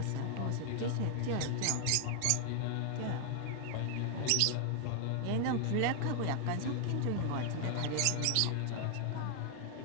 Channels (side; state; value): both; different; correlation 0.00